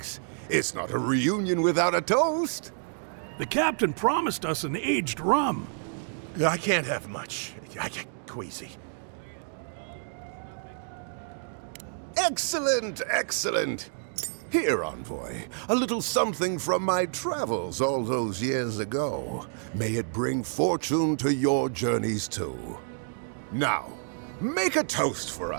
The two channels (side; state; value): left; silent; 59 dB below the other